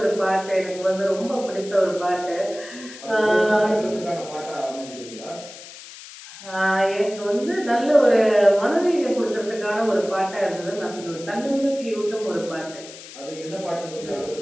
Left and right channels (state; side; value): noise; left; hiss, 16 dB below the sound